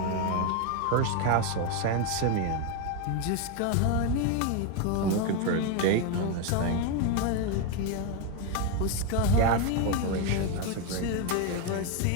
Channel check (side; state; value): both; different; correlation 0.02